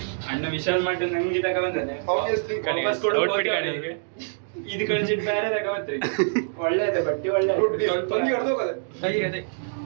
ಅಣ್ಣ ವಿಶಾಲ್ ಮಾಡಿ ನಂಗೆ ತಗ ಬಂದಾನೆ. ಇದು ಕಳಿಸಿಟ್ಟು ಬೇರೆ ತಗೋತ್ರಿ. ಒಳ್ಳೆಯದ ಬಟ್ಟಿ, ಒಳ್ಳೆ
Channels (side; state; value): left; silent; digital silence